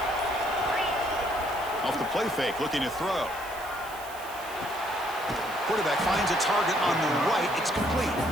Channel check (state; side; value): noise; right; hiss, 17 dB below the sound